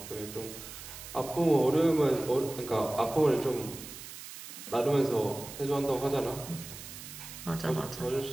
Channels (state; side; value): noise; right; hiss, 13 dB below the sound